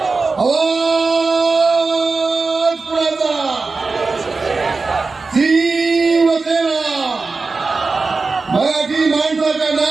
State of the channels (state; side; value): quieter; left; 4.1 dB